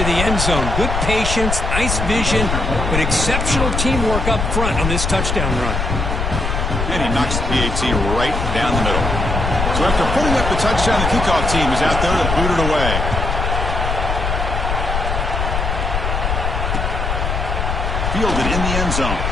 the end zone. Good patience, nice vision, but exceptional teamwork up front on this touchdown run. And he knocks the PAT right down the middle. So after putting up the touchdown, the kickoff team is out there to boot it away. Fielded in the end zone.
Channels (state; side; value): noise; left; rumble, 1 dB below the sound